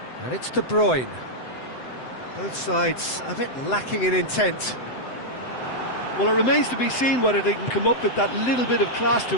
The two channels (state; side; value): late; right; 7.8 ms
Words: And it's De Bruyne. Both sides a bit lacking in intent. Well, it remains to be seen whether they can come up with that little bit of class to